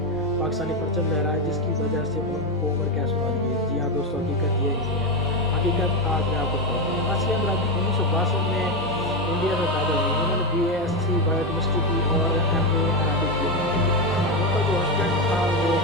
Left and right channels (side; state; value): left; noise; hum, 23 dB below the sound